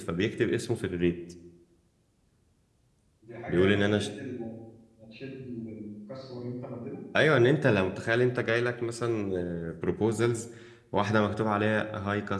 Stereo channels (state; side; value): identical; both; correlation 1.00